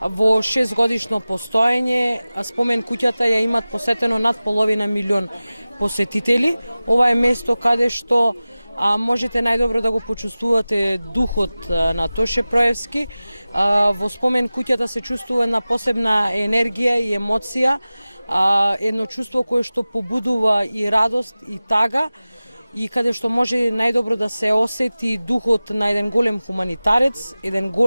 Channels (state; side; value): inverted; both; correlation -0.97